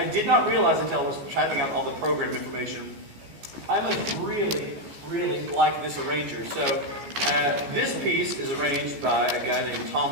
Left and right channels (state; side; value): late; left; 14 ms